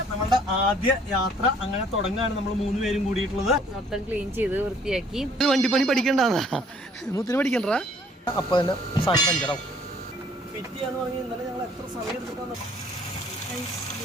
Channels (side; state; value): both; normal; correlation 0.60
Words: നമ്മളുടെ ആദ്യ യാത്ര അങ്ങനെ തുടങ്ങാണ്. നമ്മൾ 3 പേരും കൂടിയിട്ടുള്ളത്. മൊത്തം ക്ലീൻ ചെയ്ത് വൃത്തിയാക്കി. വണ്ടിപ്പണി പഠിക്കണ്ടാന്നാ മുത്തിന് പഠിക്കണ്ട. അപ്പൊ തന്നെ സാധനം പഞ്ചറാവും. ഫിറ്റ് ചെയ്യാന്ന് പറഞ്ഞാൽ ഇന്നലെ ഞങ്ങൾ എത്ര സമയം എടുത്തിട്ടാണ്